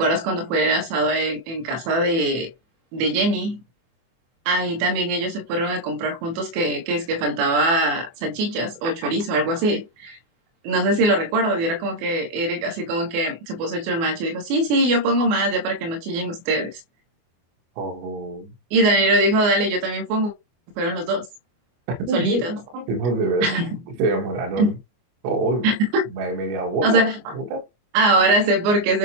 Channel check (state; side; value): late; left; 24 ms